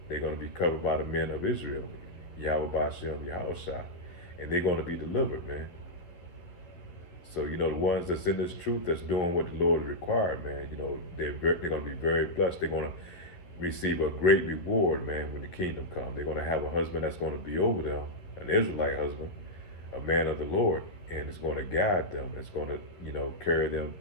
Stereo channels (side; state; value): right; late; 11 ms